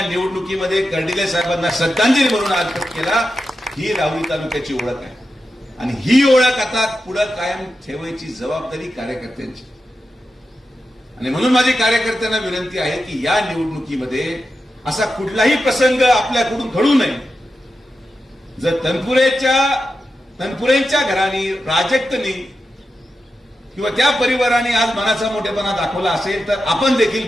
निवडणुकीमध्ये कर्डिले साहेबांना श्रद्धांजली म्हणून अर्पण केला. ही राहुरी तालुक्याची ओळख आहे आणि ही ओळख आता पुढे कायम ठेवायची जबाबदारी कार्यकर्त्यांची. आणि म्हणून माझी कार्यकर्त्यांना विनंती आहे की या निवडणुकीमध्ये असा कुठलाही प्रसंग आपल्याकडून घडू नये. जर तनपुरेंच्या घराने, प्राजक्तनी किंवा त्या परिवाराने आज मनाचा मोठेपणा दाखवला असेल तर आपण देखील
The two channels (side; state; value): both; normal; correlation 0.89